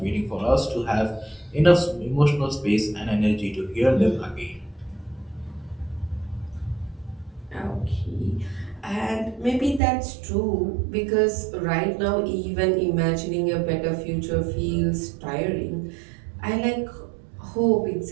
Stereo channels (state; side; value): drops out; left; at 9.8 s